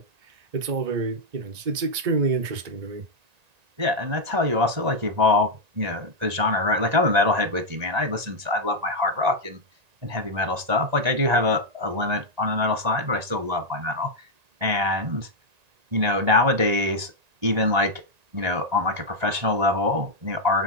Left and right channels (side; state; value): left; late; 1.9 ms